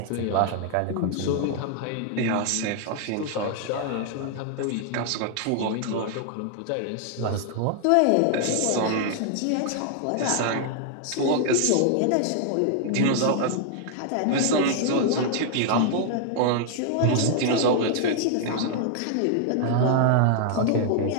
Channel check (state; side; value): different; both; correlation 0.00